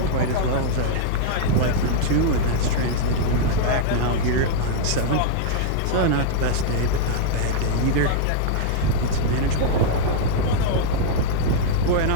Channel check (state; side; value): different; both; correlation -0.01